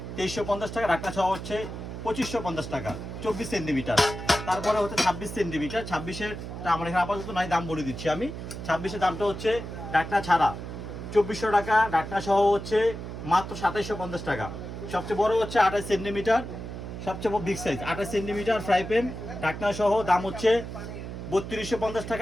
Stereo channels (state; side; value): noise; right; hum, 8 dB below the sound